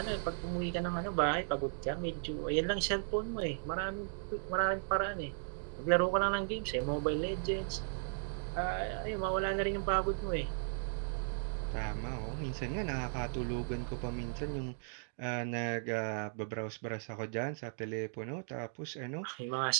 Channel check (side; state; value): left; silent; digital silence